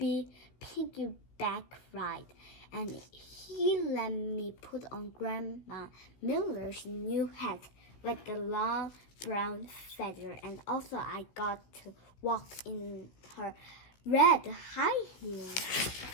piggyback ride, and he let me put on Grandma Miller's new hat with the long brown feather, and also I got to walk in her red high heels.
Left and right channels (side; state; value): right; late; 16 ms